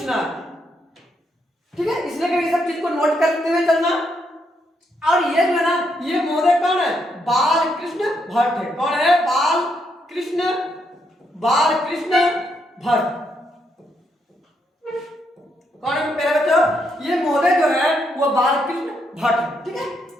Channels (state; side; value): normal; both; correlation 0.77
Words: है, ठीक है। इसलिए कि सब चीज को नोट करते हुए चलना। और ये जो है ना, ये महोदय कौन है? बाल कृष्ण भट्ट है। कौन है? बाल कृष्ण भट्ट। कौन है मेरे बच्चों? ये महोदय जो है वो बाल कृष्ण भट्ट है, ठीक है।